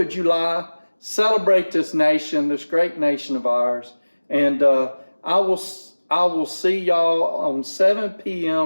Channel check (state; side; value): inverted; both; correlation -1.00